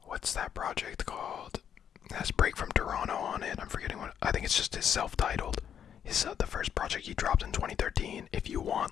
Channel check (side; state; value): right; quieter; 8.7 dB